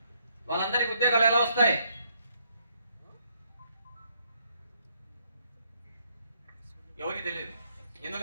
వాళ్ళందరికీ ఉద్యోగాలు ఎలా వస్తాయి? ఎవరికి తెలియదు.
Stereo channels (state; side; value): inverted; both; correlation -0.72